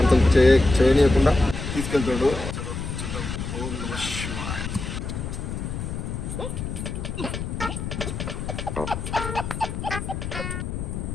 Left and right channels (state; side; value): noise; left; rumble, 5 dB below the sound